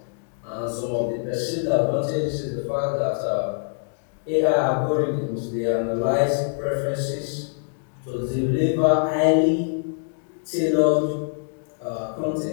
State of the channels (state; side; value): silent; right; digital silence